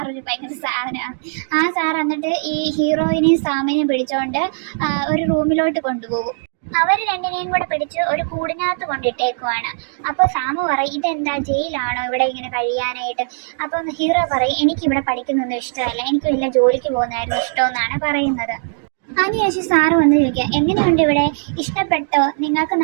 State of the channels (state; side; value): silent; left; digital silence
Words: ഒരു ഭയങ്കര സാധനമാണ്. ആ സാർ എന്നിട്ട് ഈ ഹീറോയിനെയും സാമിനെയും പിടിച്ചുകൊണ്ട് ഒരു റൂമിലോട്ട് കൊണ്ടുപോകും. അവർ 2നെയും കൂടെ പിടിച്ച് ഒരു കൂടിനകത്ത് കൊണ്ടിട്ടേക്കുവാണ്. അപ്പോൾ സാമു പറയും, ഇതെന്താ ജയിലാണോ ഇവിടെ ഇങ്ങനെ കഴിയാനായിട്ട്? അപ്പം ഹീറോ പറയും, എനിക്കിവിടെ പഠിക്കുന്നൊന്നും ഇഷ്ടമല്ല, എനിക്ക് വല്ല ജോലിക്ക് പോകുന്നതായിരുന്നു ഇഷ്ടമെന്നാണ് പറയുന്നത്. അതിനുശേഷം സാറ് വന്ന് ചോദിക്കുക, എങ്ങനെയുണ്ട് ഇവിടെ, ഇഷ്ടപ്പെട്ടോ, നിങ്ങൾക്ക്